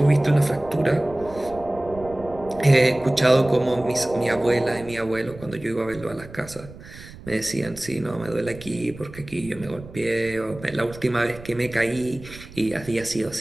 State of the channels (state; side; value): noise; right; rumble, 17 dB below the sound